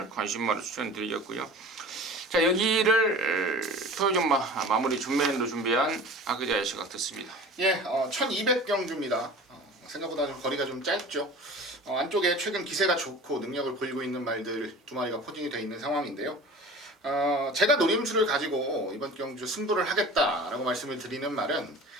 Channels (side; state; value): both; normal; correlation 0.39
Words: 관심마로 추천드리겠고요. 자, 여기를 토요정마 마무리 준메인으로 준비한 하기자의 시각 듣습니다. 예, 1200경주입니다. 생각보다 좀 거리가 좀 짧죠. 안쪽에 최근 기세가 좋고 능력을 보이고 있는 말들 2마리가 포진이 되어 있는 상황인데요. 제가 노림수를 가지고 이번 경주 승부를 하겠다라고 말씀을 드리는 말은